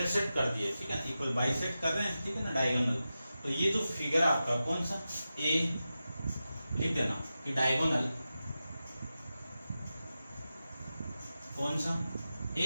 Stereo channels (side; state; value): both; inverted; correlation -0.92